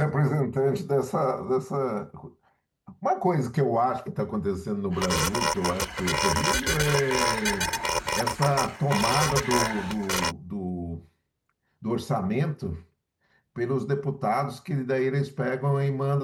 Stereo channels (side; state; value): both; identical; correlation 1.00